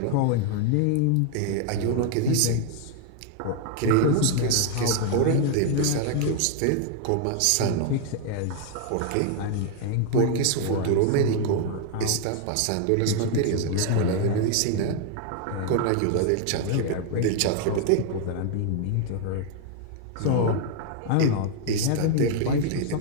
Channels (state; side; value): different; both; correlation 0.00